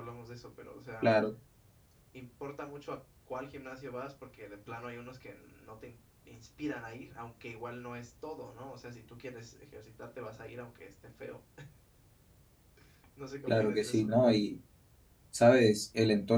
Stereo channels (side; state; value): both; identical; correlation 1.00